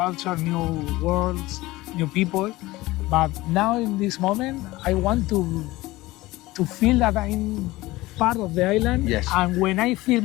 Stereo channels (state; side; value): quieter; right; 19.0 dB